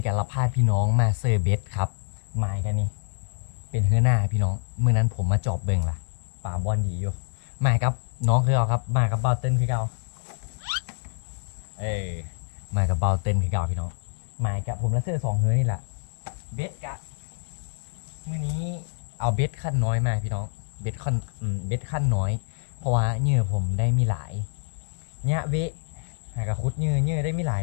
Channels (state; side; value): silent; right; 61 dB below the other